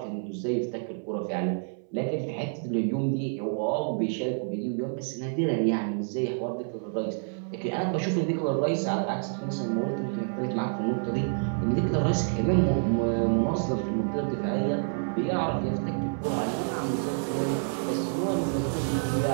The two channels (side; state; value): left; silent; 59 dB below the other